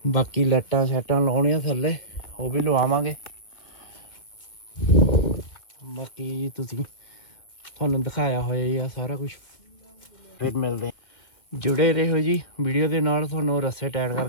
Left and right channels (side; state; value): right; late; 2.0 ms